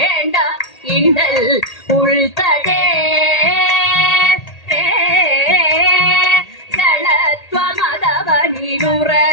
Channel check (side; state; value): right; late; 1.8 ms